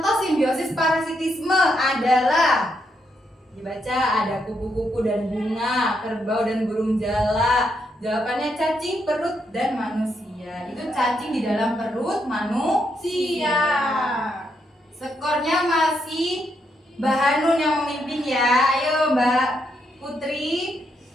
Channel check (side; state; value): both; normal; correlation 0.79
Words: simbiosis parasitisme adalah, dibaca, ada kupu-kupu dan bunga, kerbau dan burung jala. Jawabannya cacing, perut, dan manusia. Itu cacing di dalam perut manusia. Skornya masih Mbak Hanun yang memimpin ya. Ayo Mbak Putri.